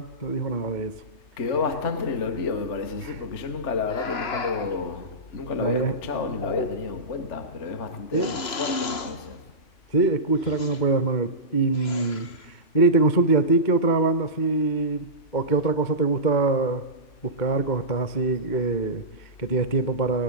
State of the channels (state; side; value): late; right; 3.0 ms